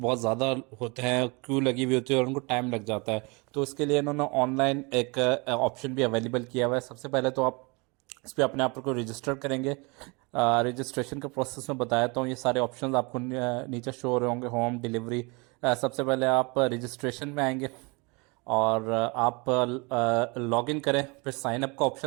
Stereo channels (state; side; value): quieter; left; 28.7 dB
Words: ज़्यादा होते हैं, क्यू लगी हुई होती है और उनको टाइम लग जाता है। तो इसके लिए इन्होंने ऑनलाइन एक ऑप्शन भी अवेलेबल किया हुआ है। सबसे पहले तो आप इस पर अपने आप को रजिस्टर करेंगे। रजिस्ट्रेशन का प्रोसेस मैं बताया हूँ। ये सारे ऑप्शंस आपको नीचे शो हो रहे होंगे। होम डिलीवरी, सबसे पहले आप रजिस्ट्रेशन में आएंगे और आप लॉग इन करें, फिर साइन अप का